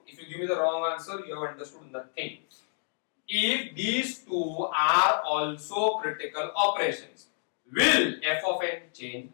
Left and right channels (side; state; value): right; silent; digital silence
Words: if you give me the wrong answer, you have understood nothing. If these two are also critical operations, will f of n change?